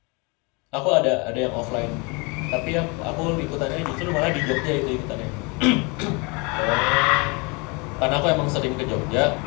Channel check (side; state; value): right; quieter; 29.5 dB